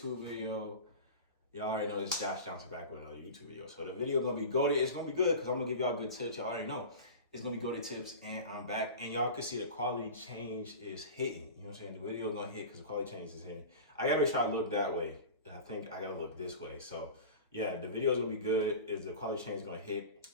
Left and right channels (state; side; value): inverted; both; correlation -0.32